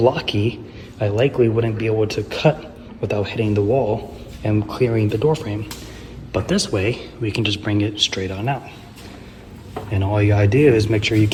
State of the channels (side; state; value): both; identical; correlation 1.00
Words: I likely wouldn't be able to cut without hitting the wall and clearing the door frame. But this way, we can just bring it straight on out. And all you gotta do is make sure you